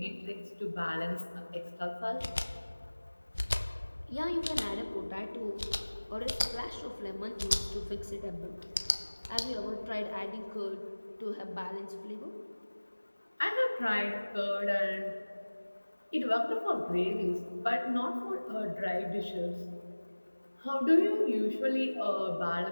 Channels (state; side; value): inverted; both; correlation -1.00